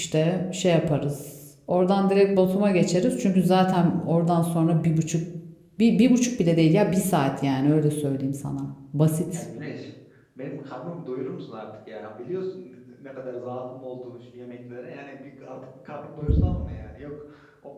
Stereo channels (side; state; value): both; identical; correlation 1.00